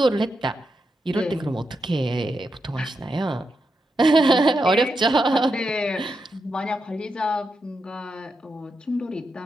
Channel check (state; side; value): normal; both; correlation 0.85